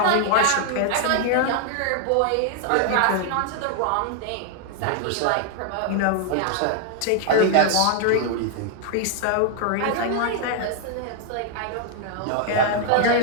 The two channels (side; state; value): both; different; correlation 0.00